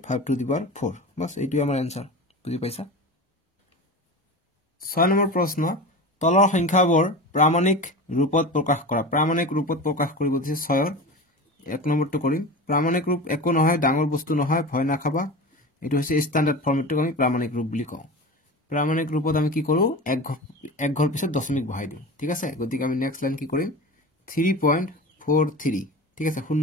টু দি পাৱাৰ 4 বাস এইটোই আমাৰ आंसर বুজি পাইছা 6 নম্বৰ প্ৰশ্ন তলৰ সংখ্যাবোৰ প্ৰামাণিক ৰূপত প্ৰকাশ কৰা প্ৰামাণিক ৰূপত প্ৰকাশ কৰিব দিছে 6ৰ এক নম্বৰটো কৰিম প্ৰামাণিক ৰূপ একো নহয় ডাঙৰ বস্তু নহয় ভয় নাখাবা এটো হৈছে স্ট্যান্ডাৰ্ড ফৰ্মেটটো আমি প্ৰামাণিক ৰূপ বুলি কওঁ প্ৰামাণিক ৰূপত আমি কি কৰো এক ঘৰ পিছত দশমিক বহাই দিওঁ ঠিক আছে গতিকে আমি নেক্সট লাইন কি কৰিম 3.43 ঠিক আছে শূন্য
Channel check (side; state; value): both; normal; correlation 0.30